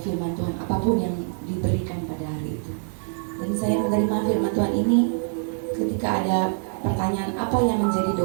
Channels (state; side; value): silent; left; digital silence